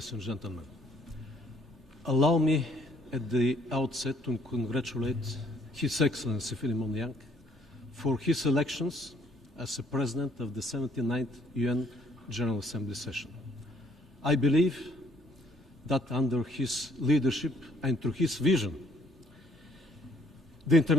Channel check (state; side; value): normal; both; correlation 0.64